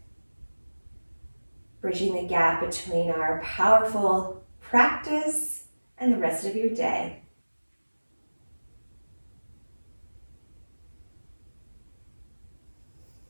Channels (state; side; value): inverted; both; correlation -1.00